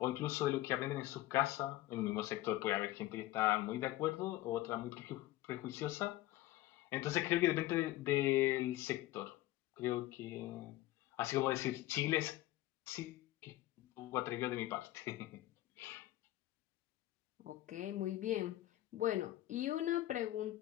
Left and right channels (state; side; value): quieter; right; 16.1 dB